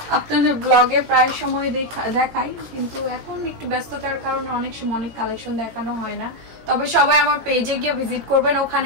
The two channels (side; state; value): left; late; 17 ms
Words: আপনাদের ব্লগে প্রায় সময় দেখাই, কিন্তু এখন একটু ব্যস্ততার কারণে অনেক সময় অনেক কালেকশন দেখানো হয় না। তবে সবাই আমার পেজে গিয়ে ভিজিট করবেন,